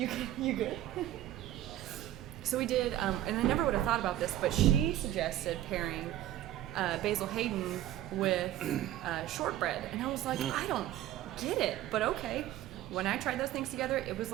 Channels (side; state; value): left; quieter; 13.4 dB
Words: good? So we did, and I never would have thought about this, but she suggested pairing Basil Hayden with shortbread, and I was like, I don't get it, but okay. When I tried those things together, it was